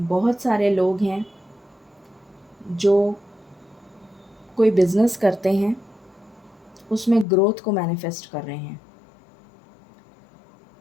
सारे लोग हैं जो कोई बिज़नेस करते हैं, उसमें ग्रोथ को मैनिफेस्ट कर रहे हैं।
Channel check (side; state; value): right; drops out; at 7.2 s